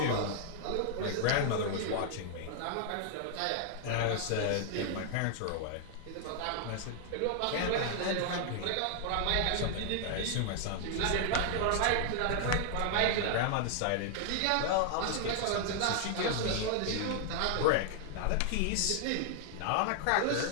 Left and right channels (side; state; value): both; different; correlation 0.00